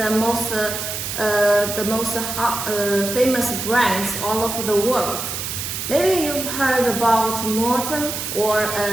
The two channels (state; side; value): noise; right; hiss, 5 dB below the sound